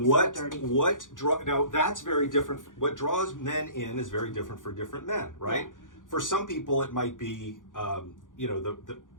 that's very different. What draws men in is very different for different men, right? Yeah. For some people, it might be,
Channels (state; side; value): late; right; 0.88 ms